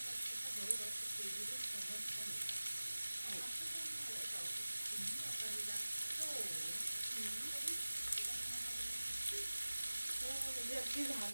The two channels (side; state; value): both; inverted; correlation -1.00